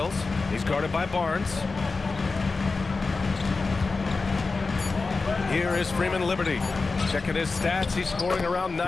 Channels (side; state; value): right; quieter; 4.0 dB